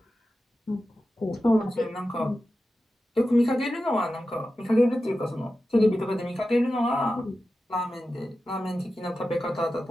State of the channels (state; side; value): normal; both; correlation 0.92